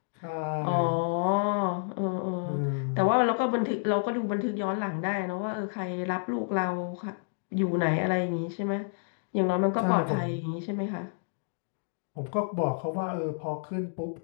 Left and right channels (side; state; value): right; silent; digital silence